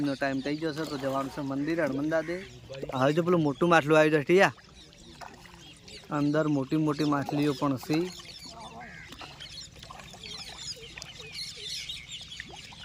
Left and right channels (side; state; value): both; identical; correlation 1.00